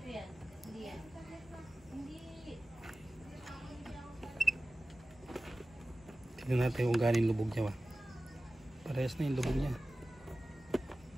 yan. Hindi yan. Hindi. Tignan natin kung galing lubog niya ba. Parehas na yung lubog niya.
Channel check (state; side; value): normal; both; correlation 0.96